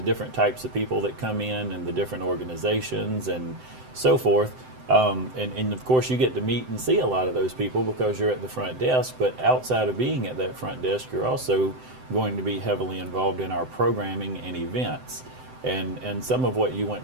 different types of people that come in and the different organizations and so forth. And of course, you get to meet and see a lot of those people because you're at the front desk. But outside of being at that front desk, you're also going to be heavily involved in our programming and events. And some of what you went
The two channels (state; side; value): late; left; 7.8 ms